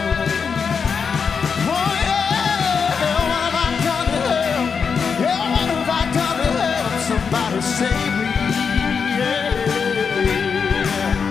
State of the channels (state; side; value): quieter; right; 6.0 dB